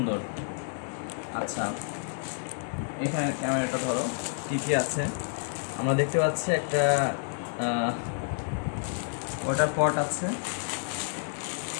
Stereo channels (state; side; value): silent; right; 57 dB below the other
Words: আচ্ছা, এখানে ক্যামেরাটা ধরো, কী কী আছে আমরা দেখতে পাচ্ছি। একটা ওয়াটার পট আছে।